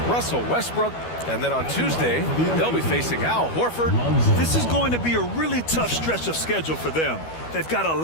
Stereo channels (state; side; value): late; right; 12 ms